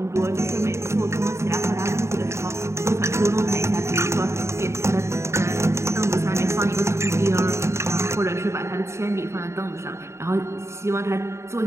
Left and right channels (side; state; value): left; late; 0.13 ms